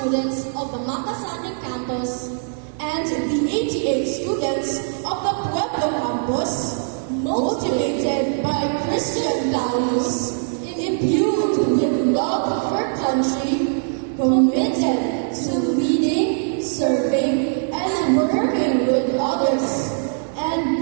of the Makasani campus and the 88 students of the Pueblo campus, motivated by Christian values, imbued with love for country, committed to leading, serving, and working with others,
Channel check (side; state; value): left; silent; digital silence